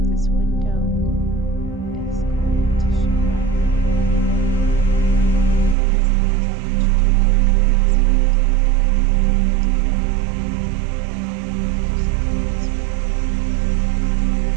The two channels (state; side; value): drops out; left; at 5.8 s